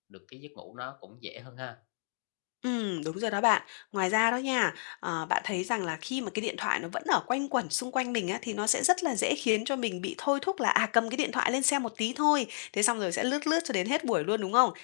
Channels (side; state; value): right; silent; digital silence